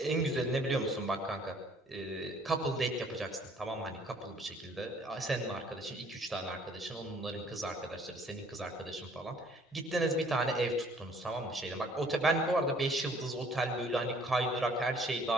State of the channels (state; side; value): normal; both; correlation 0.58